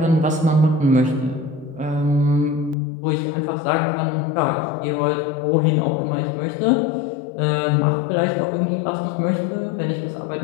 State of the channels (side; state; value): right; drops out; at 2.8 s